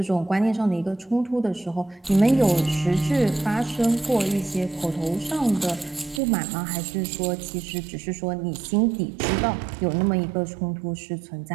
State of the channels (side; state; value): left; drops out; at 6.2 s